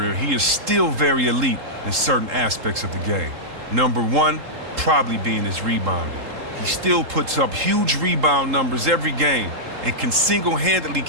he is still very elite in certain aspects of the game. Number 1, probably being his rebounding. He still puts up huge rebound numbers every game and can single-handedly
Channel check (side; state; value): left; late; 3.8 ms